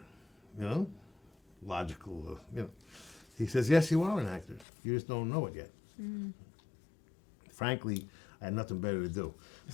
Logical, He says, "Yes, you are an actor. You just don't know it yet." Frankly, I had nothing better to do.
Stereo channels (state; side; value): drops out; right; at 4.7 s